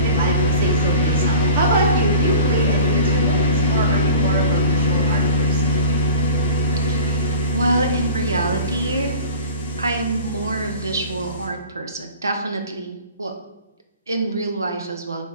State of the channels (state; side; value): inverted; both; correlation -0.40